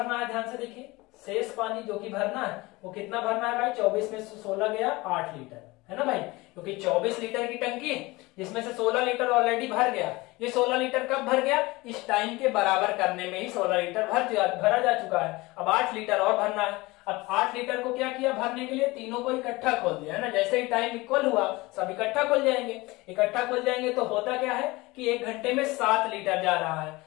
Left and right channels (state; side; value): quieter; right; 21.9 dB